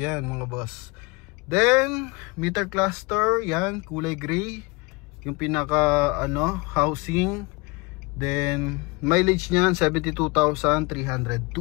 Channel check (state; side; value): quieter; right; 26.4 dB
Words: mga boss. Then meter cluster, yan kulay gray yung pinaka housing. Then mileage niyan 72,302.